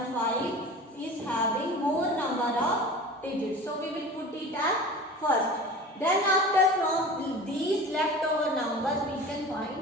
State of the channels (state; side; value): normal; both; correlation 0.37